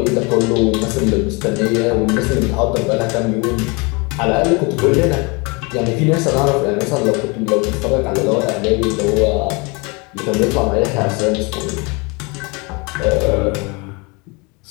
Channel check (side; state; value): right; quieter; 28.9 dB